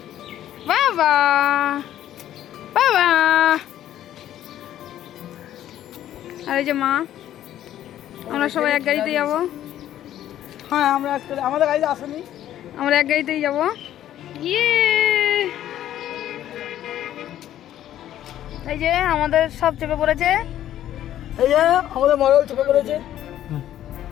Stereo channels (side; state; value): right; quieter; 12.0 dB